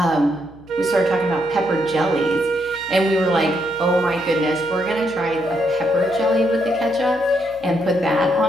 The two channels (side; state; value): left; noise; hum, 24 dB below the sound